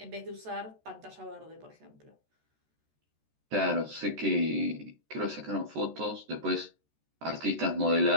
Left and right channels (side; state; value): left; late; 13 ms